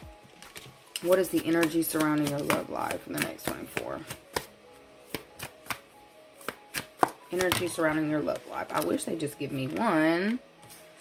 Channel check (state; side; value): identical; both; correlation 1.00